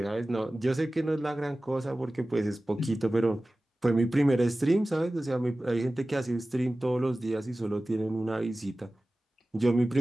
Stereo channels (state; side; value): normal; both; correlation 0.97